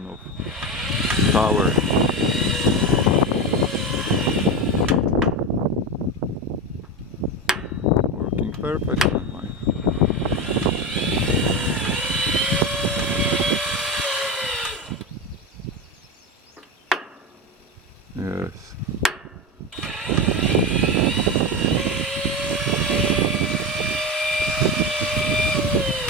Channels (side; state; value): both; normal; correlation 0.19